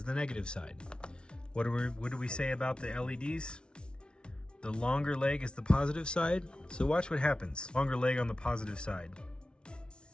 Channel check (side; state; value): right; late; 0.056 ms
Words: the negative side. What do we say about the LEDs? The longer leg is the positive side. So watch what happens. Longer leg on the positive side.